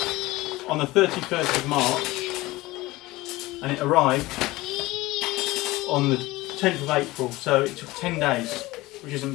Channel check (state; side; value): quieter; right; 19.5 dB